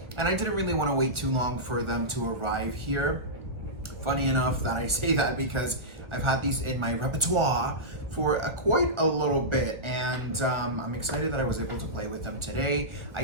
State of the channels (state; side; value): late; left; 1.2 ms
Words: and I didn't really want to wait too long for them to arrive here. Funny enough that I say that because I've had these in my repertoire for quite a little bit, and I'm excited that I was able to play with them today. I